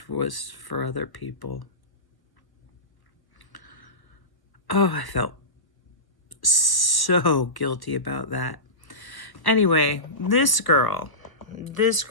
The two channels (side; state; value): right; late; 1.0 ms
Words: was for other people. Oh, I felt so guilty about that. Anyway, this girl that,